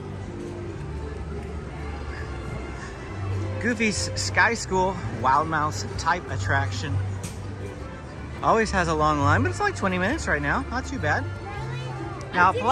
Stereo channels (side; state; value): both; identical; correlation 1.00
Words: Goofy's Sky School, Wild Mouse type attraction. Always has a long line, but it's like 20 minutes right now, not too bad. Now,